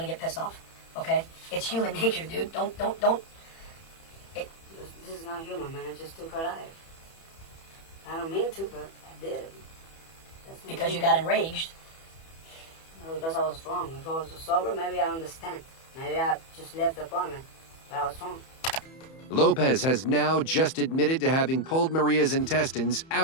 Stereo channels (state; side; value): late; right; 31 ms